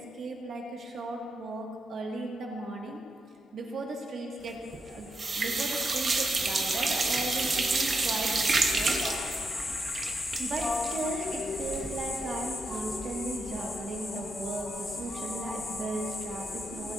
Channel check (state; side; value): normal; both; correlation 0.84